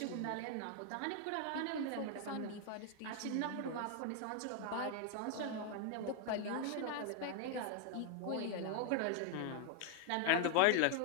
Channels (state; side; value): different; both; correlation 0.00